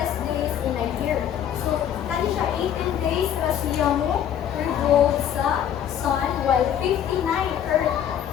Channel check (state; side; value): quieter; right; 9.7 dB